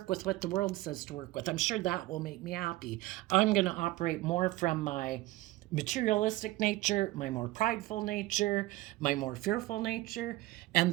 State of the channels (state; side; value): quieter; left; 18.1 dB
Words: with what the world says to work with, I'm sure that will make me happy. I'm going to operate more from my materialistic nature, my more prideful nature, my more fearful nature,